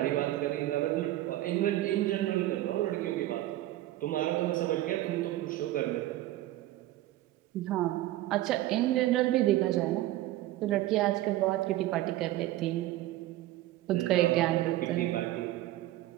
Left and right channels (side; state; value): left; quieter; 15.3 dB